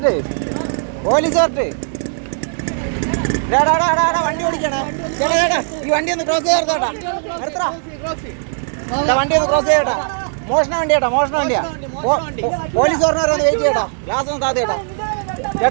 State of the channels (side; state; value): left; silent; digital silence